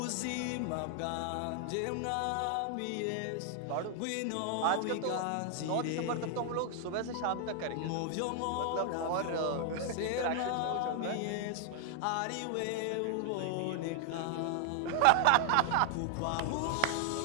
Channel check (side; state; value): both; different; correlation 0.00